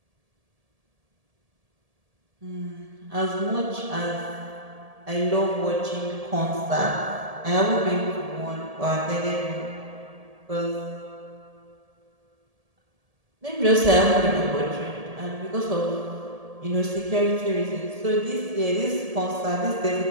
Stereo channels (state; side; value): late; left; 1.7 ms